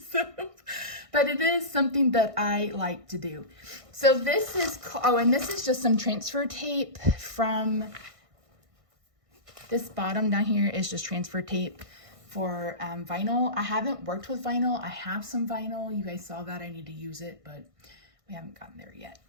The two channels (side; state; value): left; late; 1.5 ms